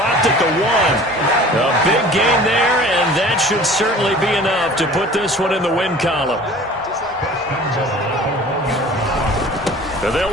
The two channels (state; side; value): normal; both; correlation 0.45